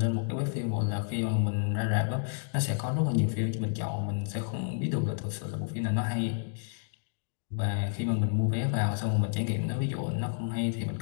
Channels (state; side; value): silent; right; digital silence